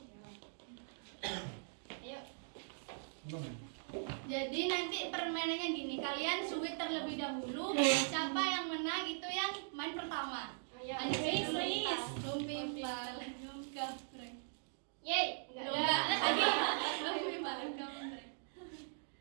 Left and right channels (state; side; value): silent; left; digital silence